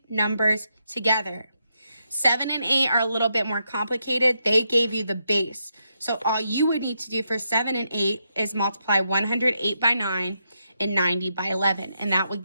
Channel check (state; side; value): inverted; both; correlation -0.82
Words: numbers together. 7 and 8 are a little bit more complicated. They gave you the base. So all you would need to do for 7 and 8 is multiply 108 by 9 and 90 by 11, and that would